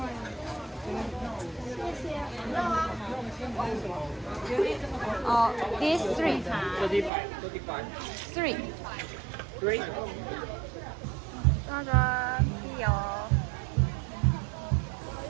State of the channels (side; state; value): left; drops out; at 7.1 s